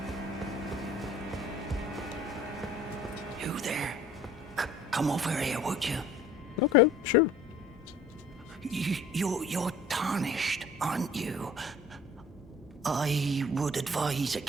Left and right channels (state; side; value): normal; both; correlation 0.51